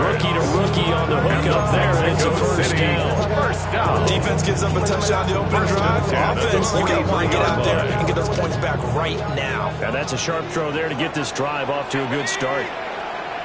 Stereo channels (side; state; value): both; identical; correlation 1.00